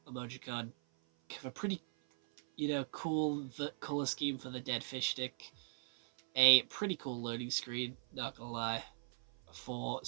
emojicon. Have a pretty, cool color scheme for the dead fish stick. A pretty cool loading screen, not gonna lie, for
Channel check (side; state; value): left; silent; 52 dB below the other